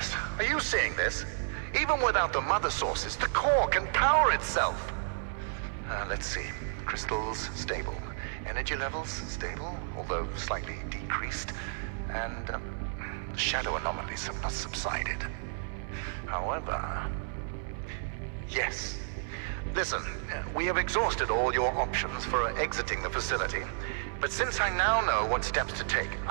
are you seeing this? Even without the mother sources, the core can power itself. Let's see. Crystals, stable. Energy levels, stable, although slightly decreased. And shadow anomalies have not subsided. However... Yes. Listen, we have exhausted all your options for exiting the facility. But since I now know what steps to take,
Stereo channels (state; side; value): silent; left; digital silence